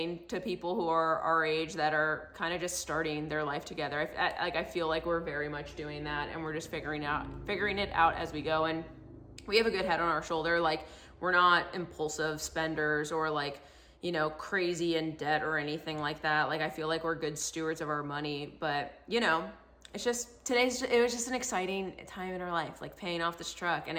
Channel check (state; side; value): identical; both; correlation 1.00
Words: to people who are our age that are kind of just starting their life together. I feel like we're very much doing that, and we're just figuring it out as we go. And we have a good head on our shoulder. Like we're not impulsive spenders or like, you know, crazy in debt or anything like that. Like I feel like we're good stewards of our money, but you know, it's just it was just an exciting time in our life, like paying off this truck. And